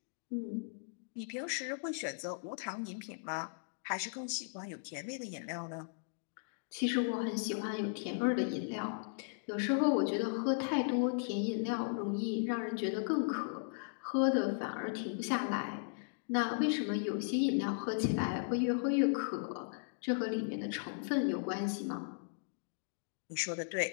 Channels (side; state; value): right; silent; digital silence